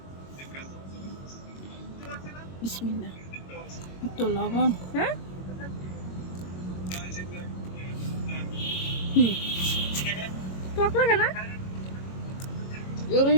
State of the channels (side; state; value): right; late; 22 ms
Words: বিসমিল্লাহ। একটু লবণ। হ্যাঁ, টক লাগে না? এগুলো